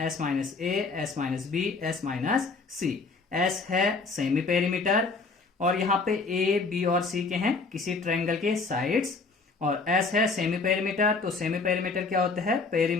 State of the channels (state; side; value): quieter; right; 4.2 dB